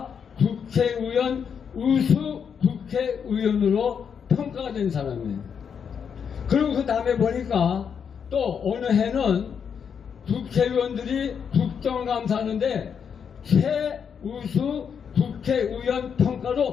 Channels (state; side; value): quieter; right; 7.1 dB